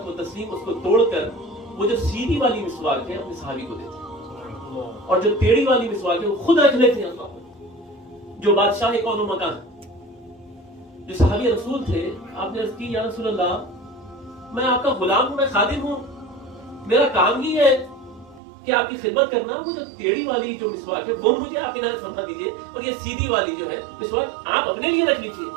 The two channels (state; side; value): drops out; left; at 18.4 s